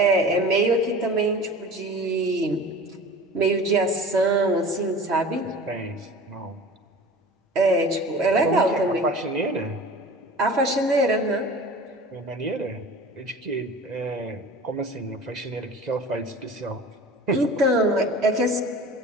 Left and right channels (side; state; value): both; normal; correlation 0.39